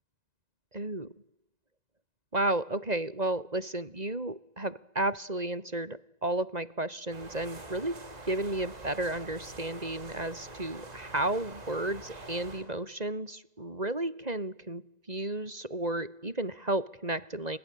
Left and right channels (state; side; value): late; left; 2.0 ms